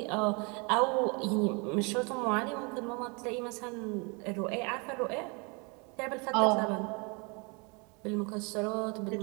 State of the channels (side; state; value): left; quieter; 31.6 dB